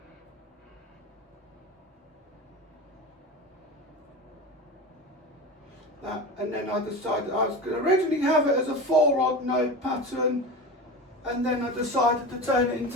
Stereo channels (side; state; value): both; normal; correlation 0.28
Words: that, and then I decided I was going to originally have it as a 4 odd node pattern, and then I decided to turn it